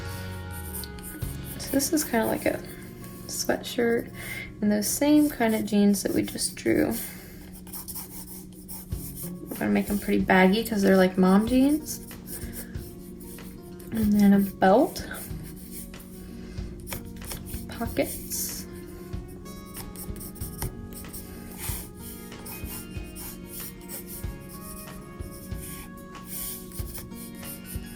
So this is kind of like a sweatshirt and those same kind of jeans that we just drew. We're gonna make them pretty baggy because they're like mom jeans. And then a belt, pockets,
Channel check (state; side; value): identical; both; correlation 1.00